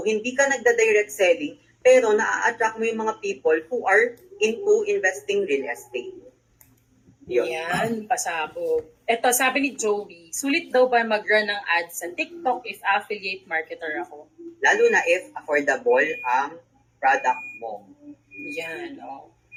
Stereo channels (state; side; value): identical; both; correlation 1.00